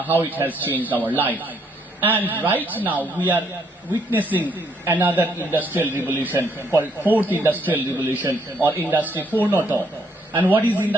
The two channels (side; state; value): both; normal; correlation 0.70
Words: it has changed our life. And right now we are witnessing another industrial revolution called 4th industrial revolution or Industry 4.0. And what is in